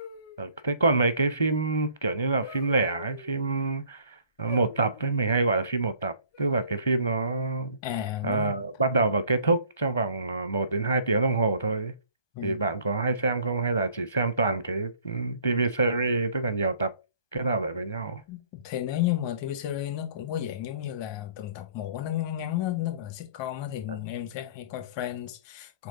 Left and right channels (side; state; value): right; late; 1.2 ms